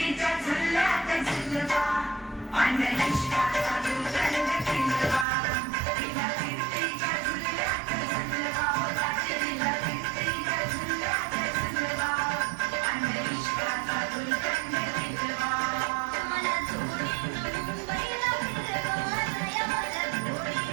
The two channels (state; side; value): drops out; left; at 5.2 s